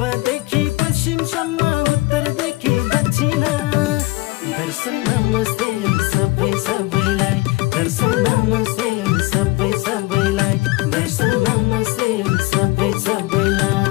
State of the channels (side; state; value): right; quieter; 21.4 dB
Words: पश्चिमसम्म उत्तरदेखि दक्षिण दर्शन नमस्ते सबै सबैलाई दर्शन नमस्ते सबै सबैलाई दर्शन नमस्ते सबै